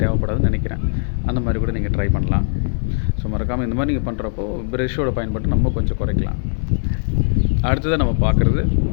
தேவைப்படாதுன்னு நினைக்கிறேன். அந்த மாதிரி கூட நீங்கள் ட்ரை பண்ணலாம். ஸோ மறக்காமல் இந்த மாதிரி நீங்கள் பண்ணுறப்போ ப்ரஷ்ஷோட பயன்பாட்டை நம்ம கொஞ்சம் குறைக்கலாம். அடுத்ததாக நம்ம பார்க்குறது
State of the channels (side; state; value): right; silent; 60 dB below the other